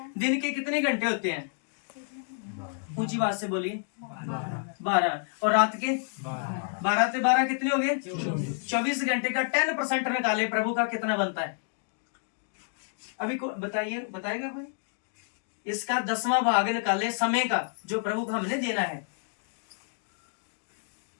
दिन के कितने घंटे होते हैं, ऊंची बात से बोलिए, 12, और रात के 12 से 12 कितने हो गए, 24 घंटे का 10% निकाले, प्रभु का कितना बनता है, अभी बताइएगा कोई, इसका 10वां भाग निकाले समय का जो प्रभु को हमने देना है।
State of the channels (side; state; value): right; silent; digital silence